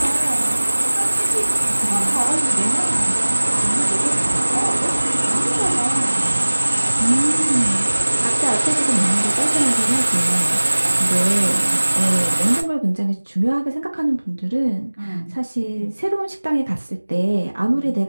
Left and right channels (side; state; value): both; inverted; correlation -1.00